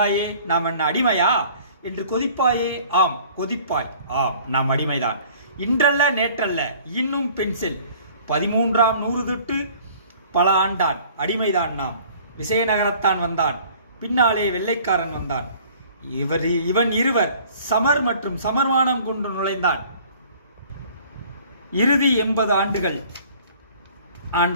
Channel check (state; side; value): inverted; both; correlation -0.52